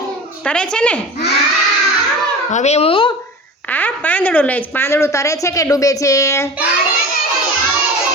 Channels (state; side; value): normal; both; correlation 0.34